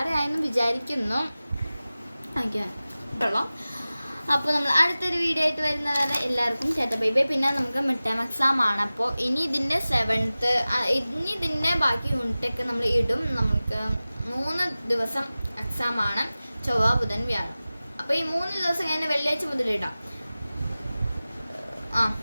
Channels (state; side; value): inverted; both; correlation -0.97